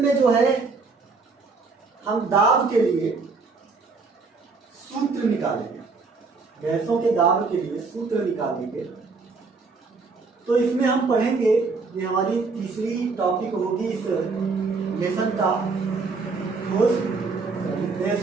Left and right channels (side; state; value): left; quieter; 4.3 dB